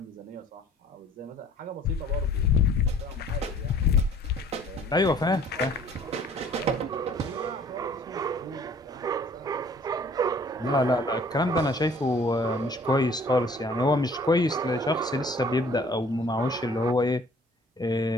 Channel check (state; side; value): normal; both; correlation 0.54